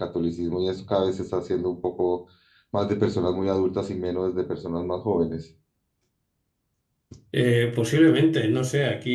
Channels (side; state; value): both; identical; correlation 1.00